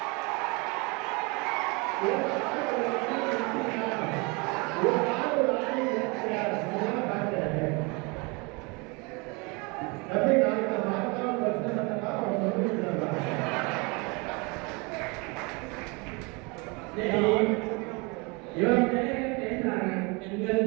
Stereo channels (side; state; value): left; quieter; 29.0 dB